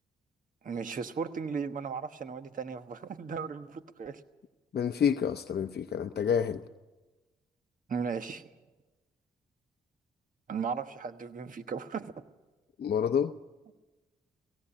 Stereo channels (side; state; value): right; quieter; 3.0 dB